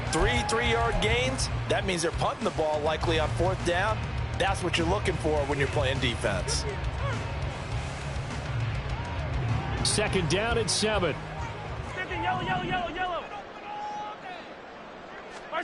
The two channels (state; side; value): identical; both; correlation 1.00